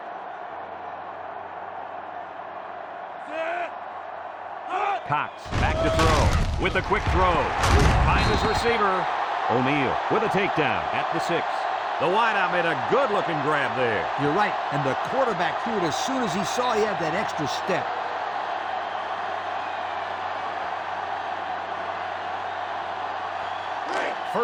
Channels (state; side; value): identical; both; correlation 1.00